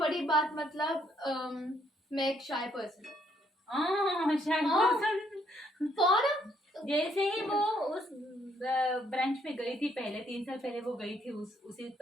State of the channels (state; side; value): normal; both; correlation 0.70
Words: बात मतलब मैं एक शाय पर्सन और जैसे ही वो उस ब्रांच में गई थी, पहले 3 साल पहले वो गई थी उसी